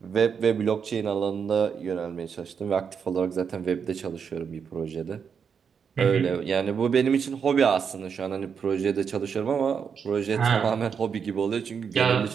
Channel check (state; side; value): quieter; left; 6.7 dB